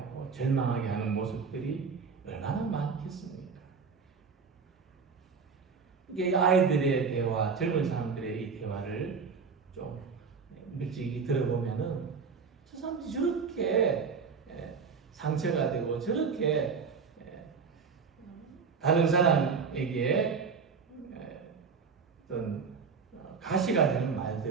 절망하게 하는 모습들이 얼마나 많겠습니까? 이게 아이들의 대화, 젊은 사람들의 이 대화를 좀 일찍이 들어보면은 저 사람들이 저렇게 상처가 되고 저렇게 다른 사람에게 어떤 가시가 되는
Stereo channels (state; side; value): quieter; left; 5.5 dB